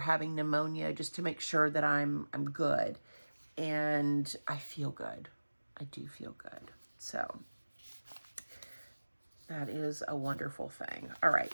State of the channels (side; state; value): both; inverted; correlation -1.00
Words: pneumonia, just to make sure that I'm good, and I feel good. I do feel good. So that is a wonderful thing. All right,